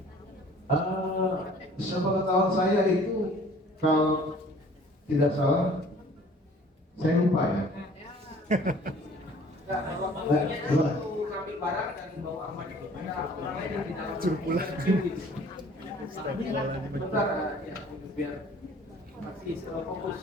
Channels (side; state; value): both; normal; correlation 0.52